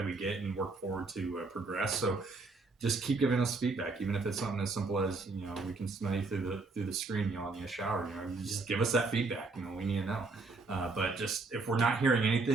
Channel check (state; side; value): quieter; left; 3.8 dB